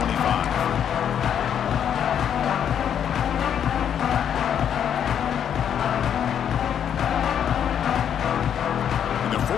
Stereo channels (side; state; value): right; quieter; 8.9 dB